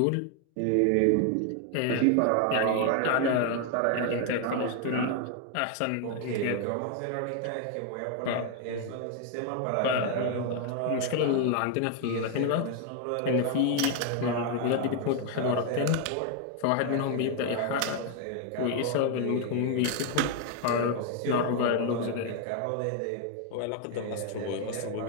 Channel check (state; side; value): different; both; correlation 0.00